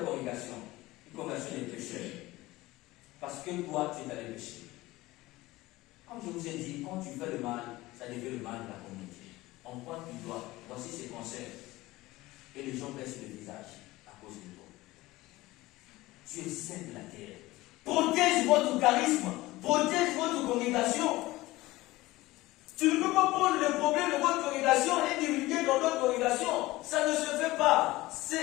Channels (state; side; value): quieter; right; 18.9 dB